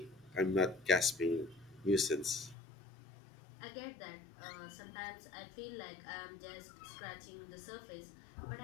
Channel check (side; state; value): right; drops out; at 2.6 s